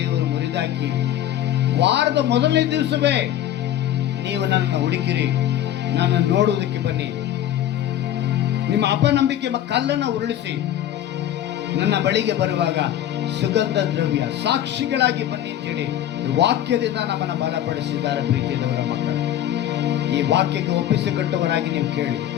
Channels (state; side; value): quieter; right; 11.7 dB